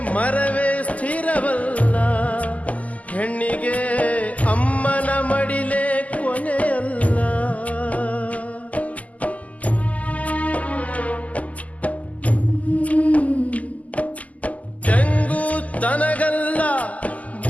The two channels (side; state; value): right; late; 0.074 ms